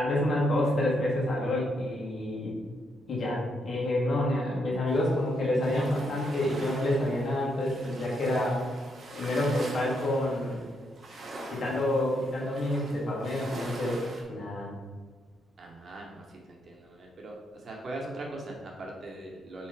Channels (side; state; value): both; normal; correlation 0.78